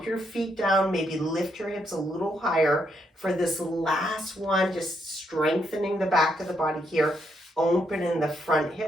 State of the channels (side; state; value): both; normal; correlation 0.77